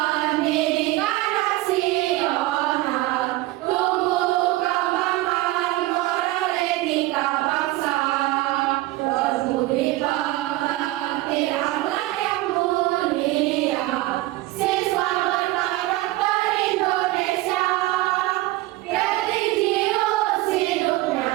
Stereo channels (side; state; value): left; quieter; 18.2 dB